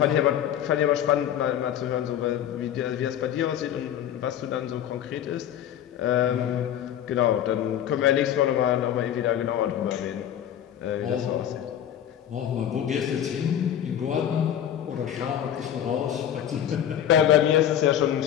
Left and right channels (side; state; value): right; quieter; 10.3 dB